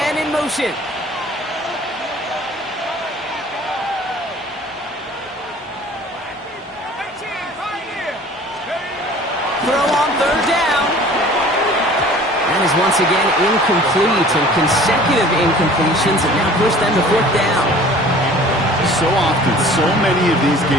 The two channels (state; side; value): normal; both; correlation 0.48